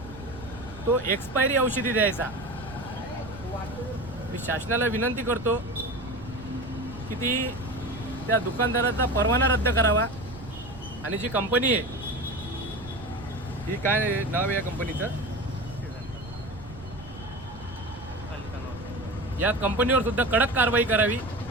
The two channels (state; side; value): noise; right; rumble, 15 dB below the sound